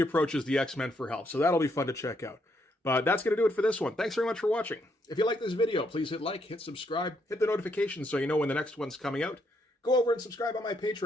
the X-Men for help. So that'll be fun to check out. But that's going to do it for this one. Thanks very much for watching. If you like this video, please hit like, hit subscribe, hit the notifications so you know when the next one's coming out. Go over and subscribe on my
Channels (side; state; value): both; normal; correlation 0.75